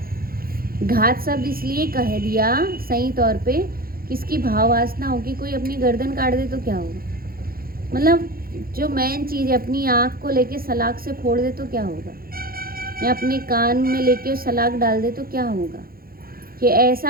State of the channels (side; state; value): left; late; 0.43 ms